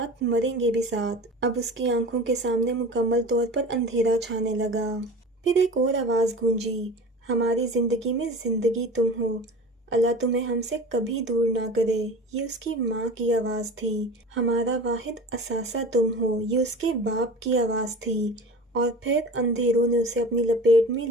مریں گے بھی ساتھ۔ اب اس کی آنکھوں کے سامنے مکمل طور پر اندھیرا چھانے لگا۔ پھر ایک اور آواز گونجی، ہماری زندگی میں زندگی تم ہو، اللہ تمہیں ہم سے کبھی دور نہ کرے۔ یہ اس کی ماں کی آواز تھی۔ ہمارا واحد اثاثہ تم ہو، یہ اس کے باپ کی آواز تھی۔ اور پھر اندھیروں نے اسے اپنی لپیٹ میں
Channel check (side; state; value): both; normal; correlation 0.36